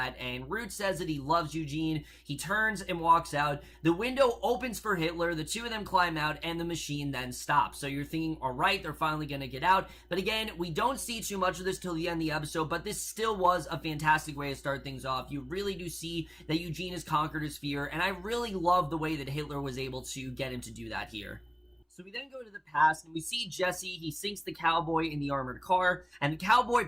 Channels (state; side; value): identical; both; correlation 1.00